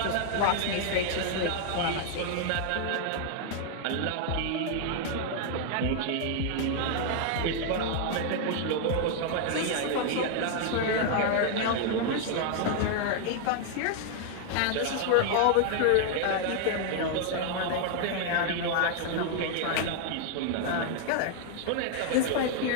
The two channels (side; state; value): both; different; correlation 0.00